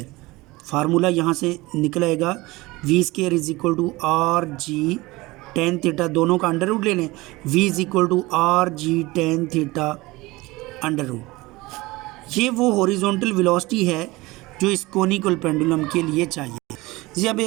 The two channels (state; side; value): quieter; left; 21.2 dB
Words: formula यहाँ से निकल आएगा V square is equal to R G tan theta, दोनों का अंडर रूट ले लें, V is equal to R G tan theta under root. ये वो हॉरिजॉन्टल वेलोसिटी है जो इस कोनिकल पेंडुलम के लिए चाहिए। जी अब